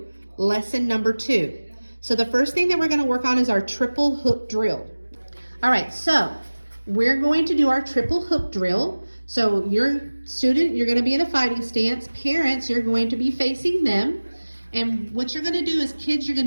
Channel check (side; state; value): both; inverted; correlation -1.00